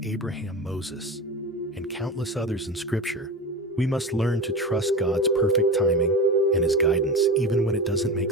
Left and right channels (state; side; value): normal; both; correlation 0.26